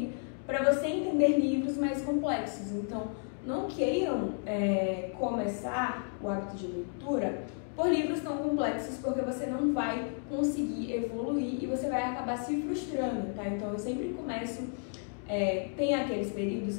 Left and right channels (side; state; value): right; silent; 56 dB below the other